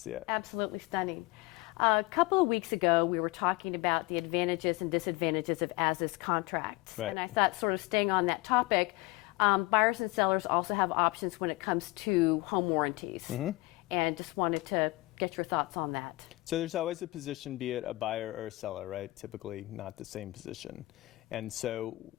it. Absolutely stunning. A couple of weeks ago, we were talking about the advantages and disadvantages of as-is contracts. Right. And I thought, sort of staying on that topic, buyers and sellers also have options when it comes to home warranties. And just wanted to get your thoughts on that. So there's always a position, be it a buyer or a seller, right? Typically not the same position. And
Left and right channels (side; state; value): right; quieter; 21.6 dB